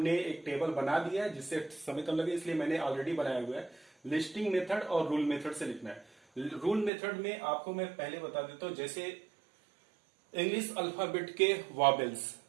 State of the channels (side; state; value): left; drops out; at 6.9 s